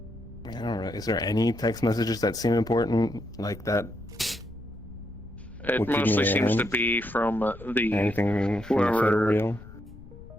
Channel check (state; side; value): noise; left; rumble, 17 dB below the sound